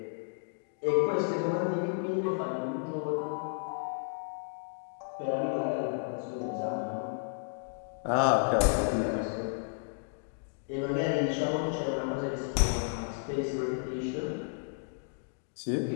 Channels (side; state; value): right; silent; digital silence